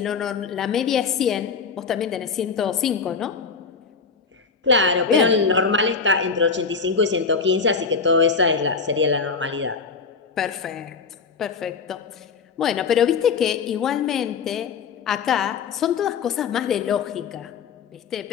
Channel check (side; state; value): right; quieter; 5.2 dB